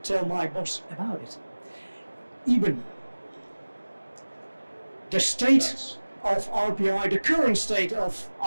tell my boss about it. Eben, the state of RPI, the current state of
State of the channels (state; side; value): inverted; both; correlation -1.00